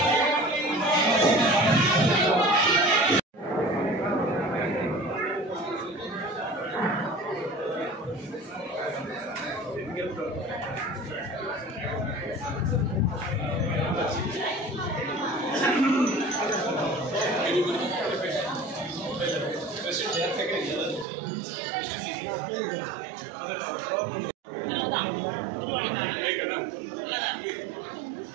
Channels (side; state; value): left; drops out; at 21.1 s